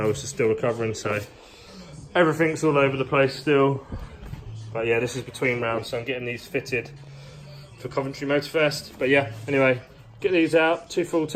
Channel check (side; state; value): both; identical; correlation 1.00